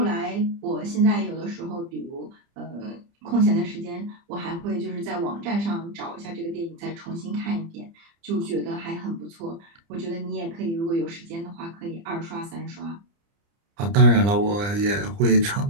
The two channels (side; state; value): left; late; 30 ms